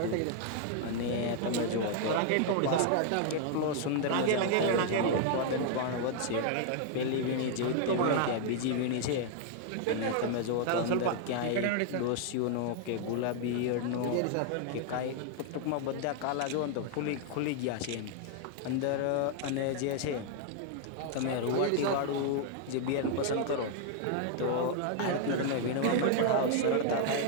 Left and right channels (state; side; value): different; both; correlation 0.00